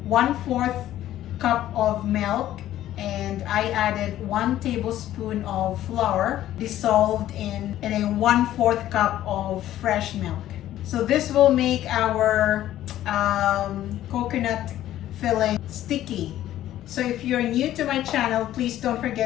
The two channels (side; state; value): right; quieter; 13.1 dB